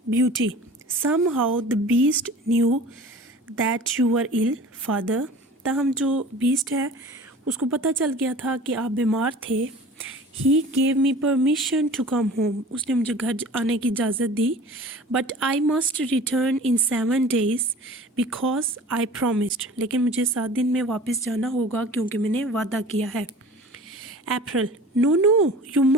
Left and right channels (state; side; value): normal; both; correlation 0.42